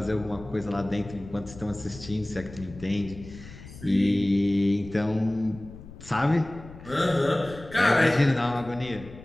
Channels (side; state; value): left; noise; rumble, 16 dB below the sound